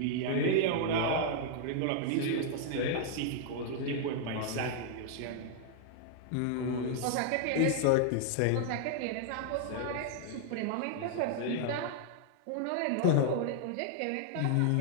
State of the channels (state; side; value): different; both; correlation -0.01